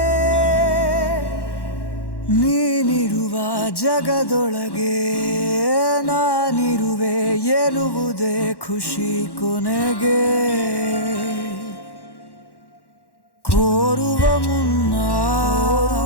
ನೀನಿರುವ ಜಗದೊಳಗೆ ನಾನಿರುವೆ ಎನ್ನುವುದೇ ಖುಷಿ ಕೊನೆಗೆ ಕೋರುವ ಮುನ್ನ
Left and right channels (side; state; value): right; late; 1.1 ms